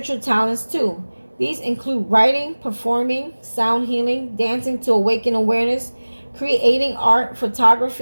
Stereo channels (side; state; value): both; inverted; correlation -1.00